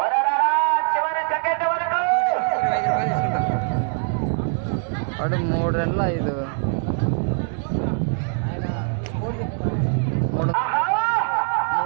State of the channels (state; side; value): silent; left; 64 dB below the other